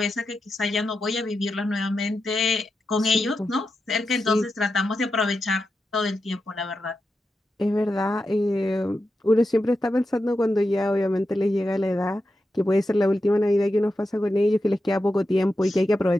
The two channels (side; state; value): both; normal; correlation 0.89